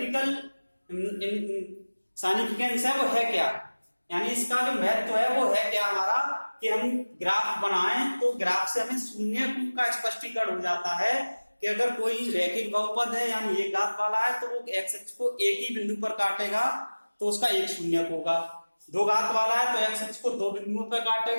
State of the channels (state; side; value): inverted; both; correlation -1.00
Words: साइनिफिकेंस है वो है क्या, यानी इसका जो महत्व है वो है क्या हमारा, कि हम ग्राफ बनाएं तो ग्राफ से हमें शून्य का स्पष्टीकरण हो जाता है कि अगर कोई रैखिक बहुपद है यानी एक घात वाला है तो वो एक्स अक्ष को एक ही बिंदु पर काटेगा तो उसका एक शून्य होगा, दो घात वाला है तो एक्स अक्ष को दो बिंदुओं पर